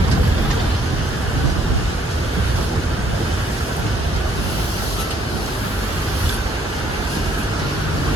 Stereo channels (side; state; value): both; normal; correlation 0.65